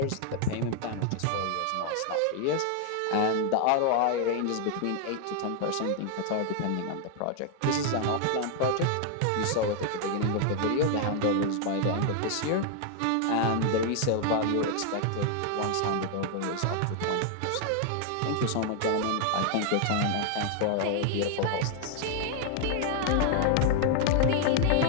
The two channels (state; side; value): different; both; correlation 0.00